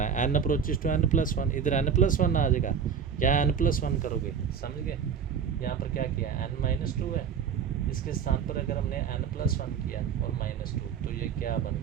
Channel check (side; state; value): left; quieter; 7.1 dB